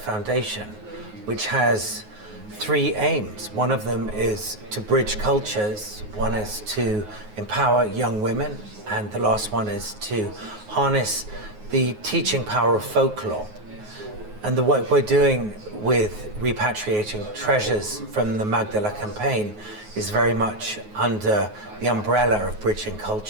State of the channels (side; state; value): left; late; 9.5 ms